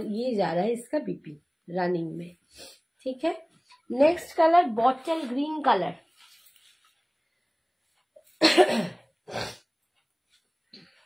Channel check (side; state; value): both; identical; correlation 1.00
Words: ये जा रहा है इसका बीपी रनिंग में, ठीक है। Next colour bottle green colour.